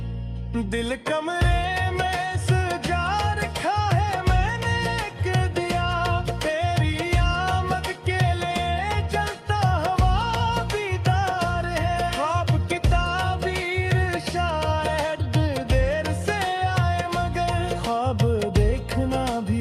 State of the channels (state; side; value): identical; both; correlation 1.00